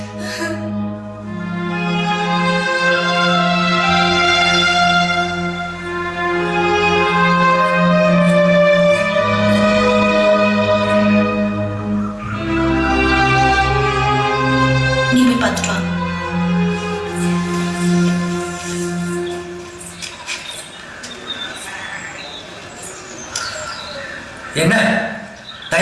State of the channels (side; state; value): both; identical; correlation 1.00